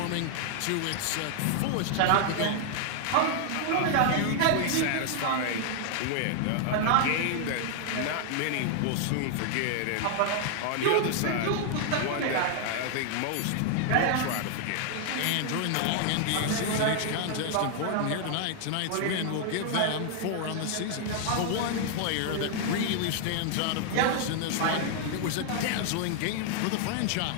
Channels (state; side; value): different; both; correlation 0.00